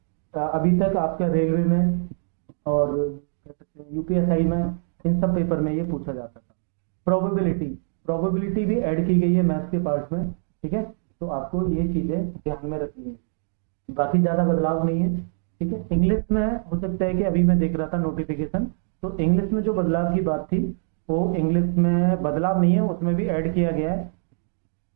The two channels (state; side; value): silent; left; digital silence